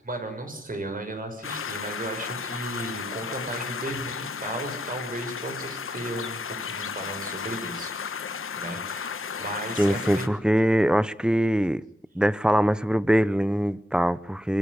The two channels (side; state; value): both; normal; correlation 0.82